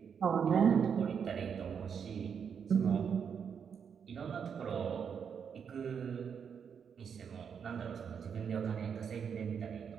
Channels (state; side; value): quieter; left; 7.1 dB